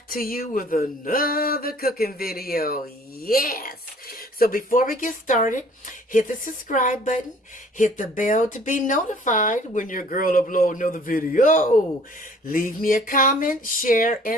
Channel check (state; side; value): normal; both; correlation 0.54